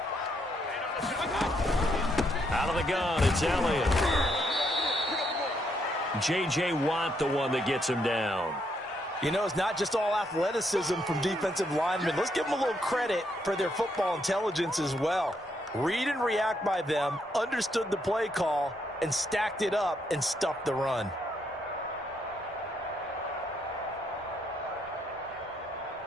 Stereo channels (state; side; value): normal; both; correlation 0.75